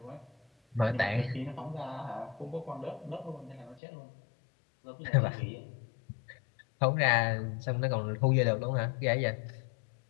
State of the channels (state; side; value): drops out; right; at 3.8 s